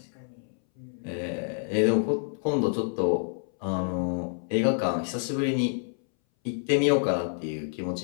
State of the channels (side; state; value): right; silent; 59 dB below the other